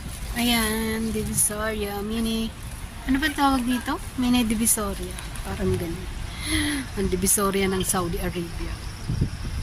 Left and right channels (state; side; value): identical; both; correlation 1.00